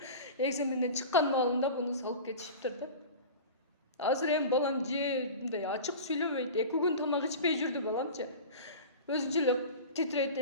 экзаменден чыккан маалында буну салып кетишиптир да. Азыр эми балам же мындай ачык сүйлөбөйт. 2 күн тамак ичпей жүрдү баламчы. Өзүнчө эле титрейт,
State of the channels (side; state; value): both; inverted; correlation -0.33